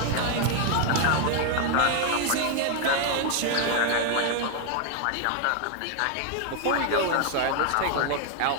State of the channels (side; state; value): both; different; correlation 0.00